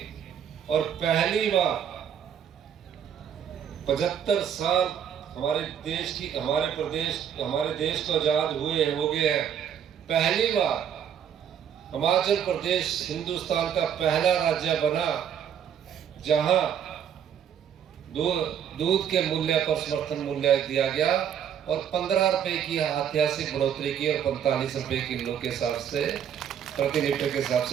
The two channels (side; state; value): left; quieter; 8.7 dB